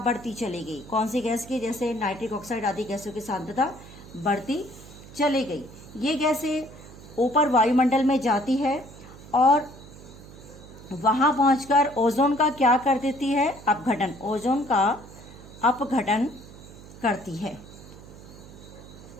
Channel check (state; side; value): noise; right; hum, 18 dB below the sound